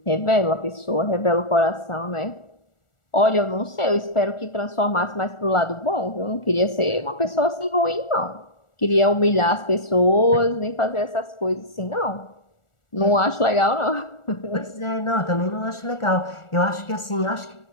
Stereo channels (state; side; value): late; right; 1.4 ms